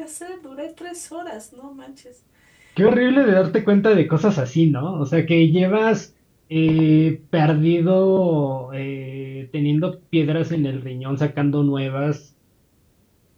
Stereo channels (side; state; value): both; identical; correlation 1.00